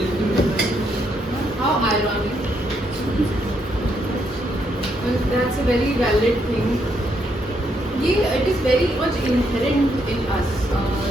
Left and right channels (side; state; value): both; normal; correlation 0.76